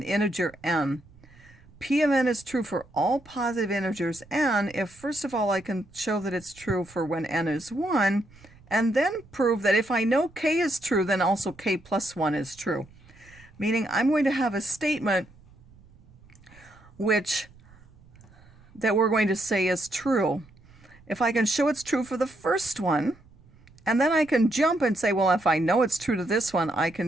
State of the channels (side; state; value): right; noise; rumble, 26 dB below the sound